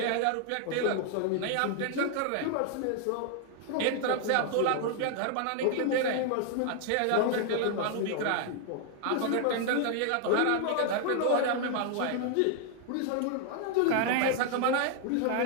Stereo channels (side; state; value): both; different; correlation 0.00